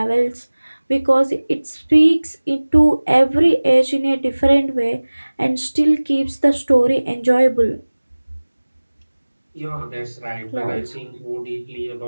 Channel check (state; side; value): inverted; both; correlation -1.00